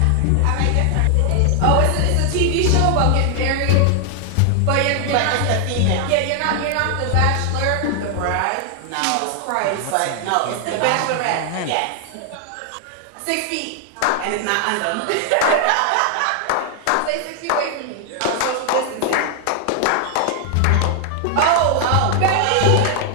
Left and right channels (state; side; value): different; both; correlation 0.00